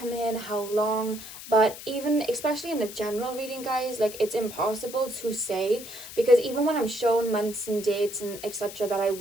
in, how long, but even especially in a general reading, guys, like it's impossible to say, because even when I'm shown months and dates and etc that I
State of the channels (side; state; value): left; noise; hiss, 13 dB below the sound